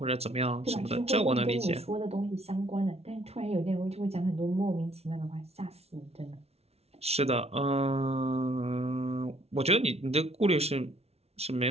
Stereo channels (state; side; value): late; left; 0.30 ms